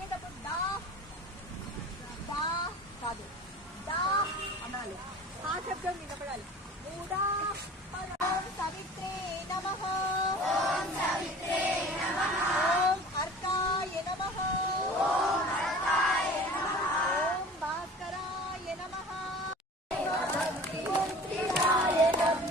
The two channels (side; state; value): both; normal; correlation 0.41